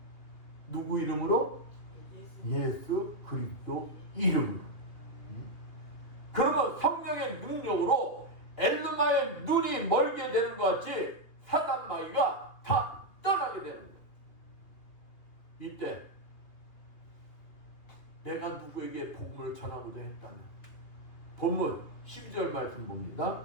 누구 이름으로? 예수 그리스도 이름으로. 그러면 성령의 능력으로 엘르마의 눈이 멀게 되는 것 같이 사단 마귀가 다 떠나게 되는 거예요. 이때 내가 누구에게 복음을 전하고자 했다면 본문 12절 말씀 봅니다.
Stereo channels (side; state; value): right; late; 3.0 ms